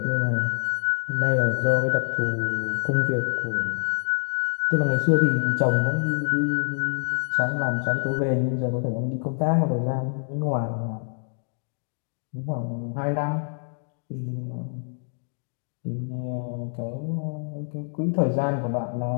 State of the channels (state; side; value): silent; right; digital silence